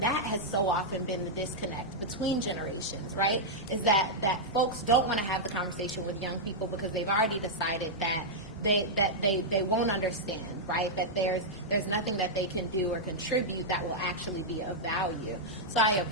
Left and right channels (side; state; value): both; normal; correlation -0.06